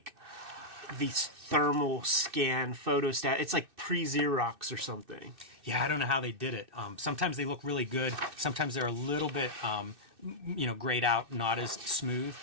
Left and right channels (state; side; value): late; left; 2.6 ms